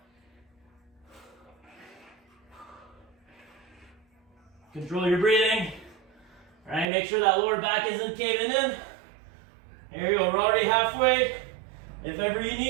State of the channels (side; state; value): left; drops out; at 6.9 s